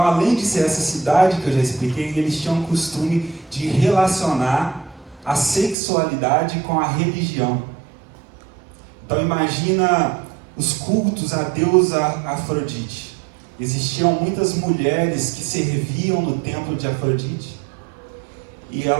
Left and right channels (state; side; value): drops out; left; at 5.8 s